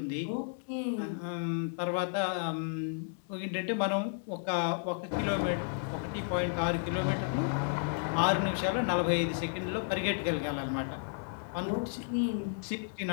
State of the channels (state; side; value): silent; right; digital silence